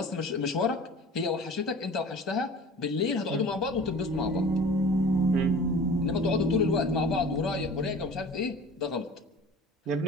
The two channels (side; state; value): both; normal; correlation 0.41